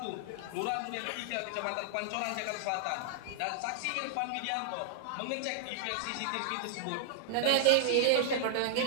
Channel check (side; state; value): both; different; correlation 0.00